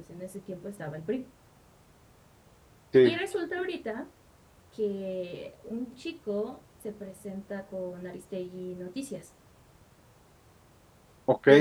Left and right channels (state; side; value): identical; both; correlation 1.00